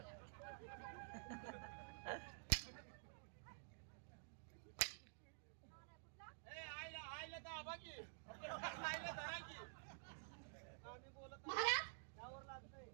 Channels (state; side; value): silent; left; digital silence